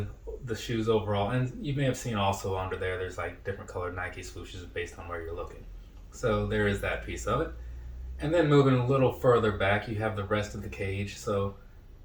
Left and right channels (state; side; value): identical; both; correlation 1.00